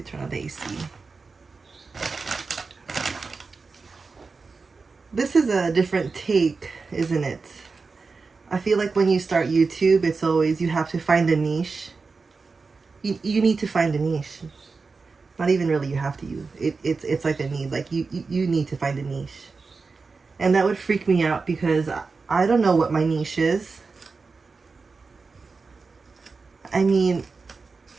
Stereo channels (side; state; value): left; quieter; 4.4 dB